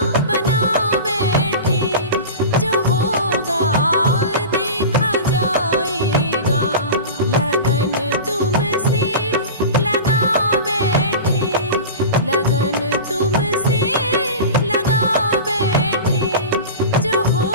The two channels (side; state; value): both; inverted; correlation -0.30